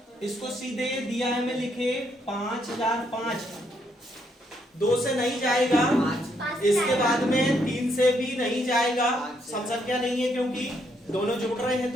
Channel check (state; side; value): normal; both; correlation 0.74